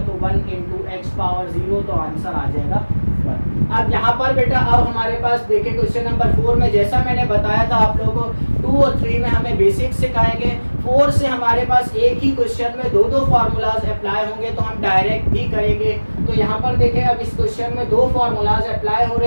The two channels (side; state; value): both; inverted; correlation -1.00